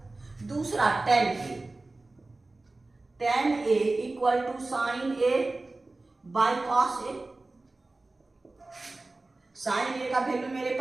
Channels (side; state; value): left; quieter; 3.1 dB